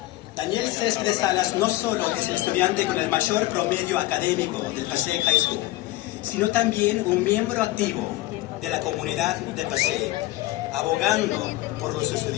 Daniel Céspedes Salas no solo es el estudiante con el mayor promedio académico del Passaic High School, sino también un miembro activo de la comunidad de Passaic, abogando por los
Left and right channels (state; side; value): quieter; right; 18.0 dB